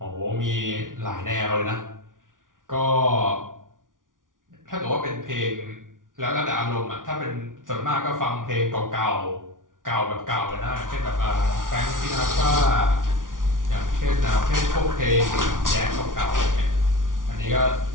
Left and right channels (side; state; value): left; late; 0.88 ms